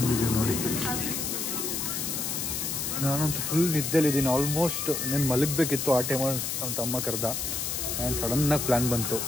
ನೋಡಿ. ನಾನಂತೂ ಫುಲ್ ನಿದ್ದೆಲಿದ್ದೀನಿ ಆಲ್ಮೋಸ್ಟ್. నేను ಮಲಗಬೇಕಿತ್ತು ಆ ಟೈಮಲ್ಲಿ. ನಮ್ಮ ತಮ್ಮ ಕರೆದ, ನಾನು ಸಡನ್ನಾಗಿ ಪ್ಲ್ಯಾನ್ ಬಂತು,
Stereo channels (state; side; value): noise; left; hiss, 2 dB below the sound